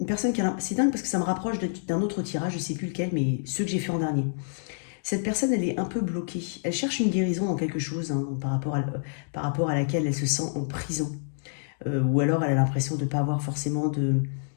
personne qui a... C'est dingue parce que ça me rapproche d'un autre tirage, je ne sais plus lequel, mais ceux que j'ai fait en dernier. Cette personne, elle est un peu bloquée. Elle cherche une guérison dans quelque chose, hein, par rapport à laquelle elle se sent en prison. Ou alors elle a l'impression de ne pas avoir forcément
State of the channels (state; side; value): silent; right; digital silence